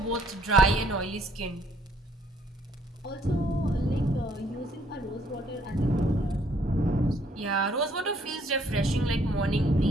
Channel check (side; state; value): both; normal; correlation 0.65